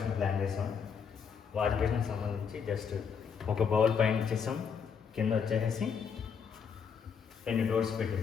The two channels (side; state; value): right; quieter; 6.7 dB